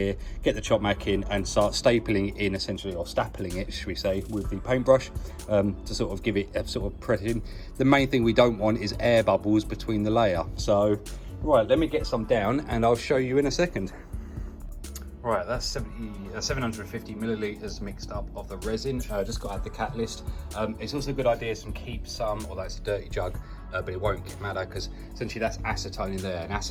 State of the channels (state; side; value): identical; both; correlation 1.00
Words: get the chop mat in and start stapling it in essentially, or stapling it, should we say, with the paintbrush to sort of give it a sort of press in. The main thing we don't want is air bubbles between the layer. So, right, let me get some down and I'll show you in a second. Right, that's 750 millilitres mixed up of the resin. Just got to add the catalyst. It's also a good idea to keep some, although it's a dirty jug, but it won't matter because essentially that's acetone in there, and